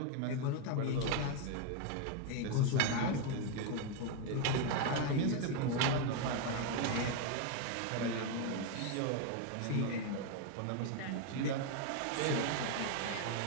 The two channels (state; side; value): different; both; correlation 0.01